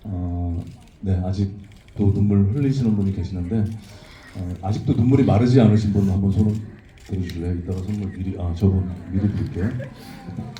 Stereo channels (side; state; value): both; identical; correlation 1.00